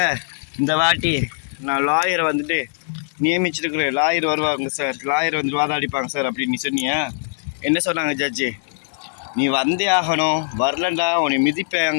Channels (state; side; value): silent; right; 65 dB below the other